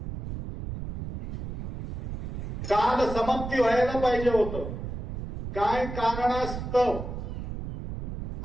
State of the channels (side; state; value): right; noise; rumble, 7 dB below the sound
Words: काल समाप्ती व्हायला पाहिजे होतं, काय कारणास्तव